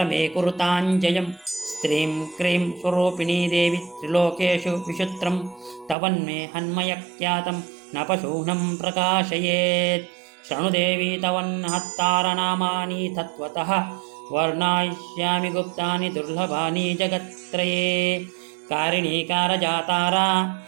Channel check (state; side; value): drops out; left; at 6.0 s